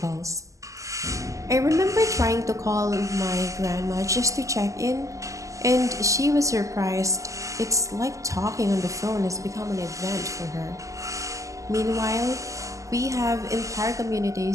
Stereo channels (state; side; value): late; left; 0.16 ms